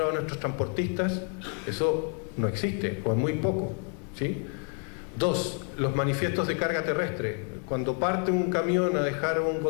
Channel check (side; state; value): right; quieter; 38.4 dB